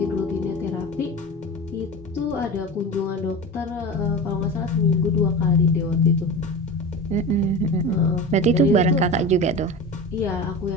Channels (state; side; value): normal; both; correlation 0.29